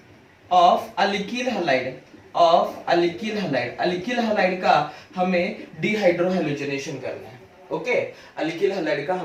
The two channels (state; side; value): identical; both; correlation 1.00